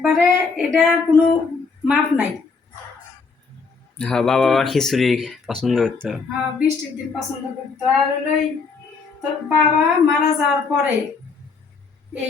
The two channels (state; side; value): quieter; right; 4.7 dB